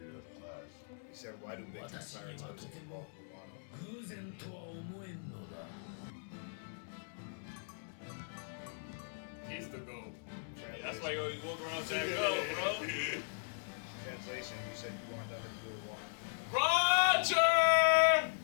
to clash. He said, why do big 私にはとても pirates 偶然とは思えんのだ He's the goat. Yeah, that's why you always walk around saying, "Go, bro." Translation, you said you want nothing to do with water. Roger.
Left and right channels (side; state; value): right; silent; digital silence